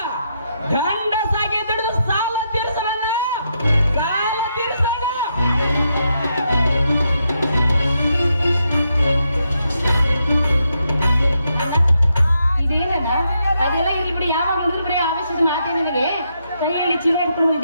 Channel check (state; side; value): inverted; both; correlation -0.81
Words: ಗಂಡಸಾಗಿ ದುಡಿದು ಸಾಲ ತೀರಿಸೋಣ, ಸಾಲ ತೀರಿಸೋಣ. ಇದೇನಣ್ಣ? ಅದೆಲ್ಲ ಇಲ್ಲಿ ಬಿಡಿ, ಯಾವಾಗ ನೋಡಿದ್ರು ಬರೀ ಅವಶ್ಯಕ ಮಾತೇ ನನಗೆ. ಕೈಯಲ್ಲಿ ಚೀಲ ಇಟ್ಕೊಂಡು